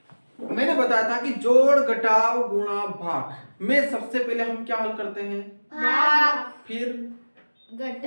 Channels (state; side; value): inverted; both; correlation -1.00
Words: मैंने बताया था कि जोड़ घटाव गुणा भाग में सबसे पहले हम क्या हल करते हैं? भाग, फिर